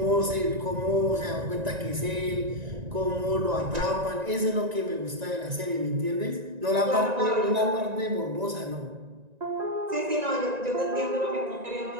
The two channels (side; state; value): left; late; 1.9 ms